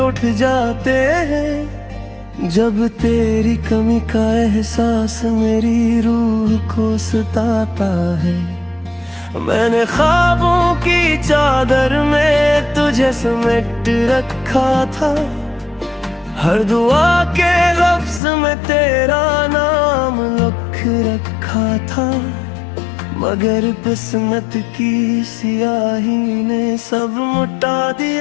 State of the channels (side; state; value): right; drops out; at 18.2 s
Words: जाते हैं। जब तेरी कमी का एहसास मेरी रूह को सताता है। मैंने ख्वाबों की चादर में तुझे समेट रखा था, हर दुआ के लफ्ज में तेरा नाम लिख रखा था। मगर किस्मत की सियाही ने सब मिटा